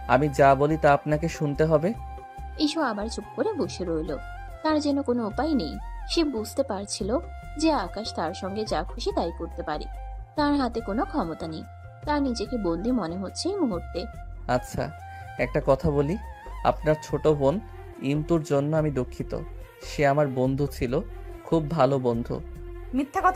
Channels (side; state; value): both; identical; correlation 1.00